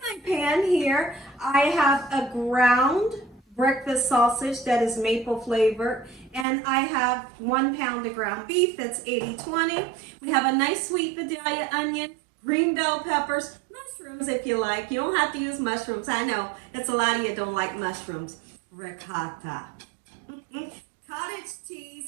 pan here, I have a ground breakfast sausage that is maple flavored, and I have 1 pound of ground beef that's 80-20. We have a nice sweet Vidalia onion, green bell peppers, mushrooms if you like. You don't have to use mushrooms. I know it's a lot of you don't like mushrooms. Ricotta. Cottage cheese,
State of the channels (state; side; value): drops out; left; at 6.5 s